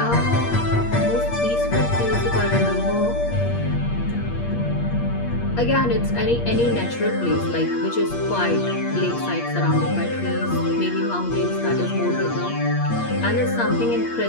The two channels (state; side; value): late; right; 8.5 ms